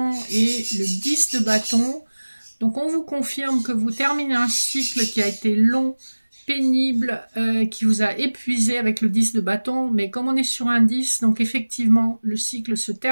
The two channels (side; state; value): both; inverted; correlation -1.00